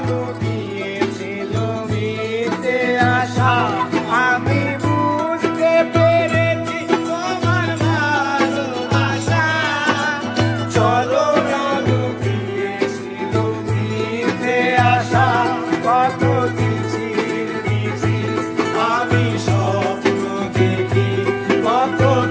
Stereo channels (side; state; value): both; identical; correlation 1.00